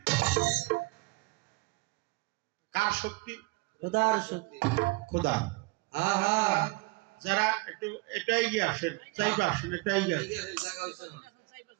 কার শক্তি? খোদার শক্তি। খোদা। হ্যাঁ হ্যাঁ, যারা একটু এটাই গিয়ে আসেন, চাইবা আসেন, এটাই গিয়ে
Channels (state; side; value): quieter; left; 24.4 dB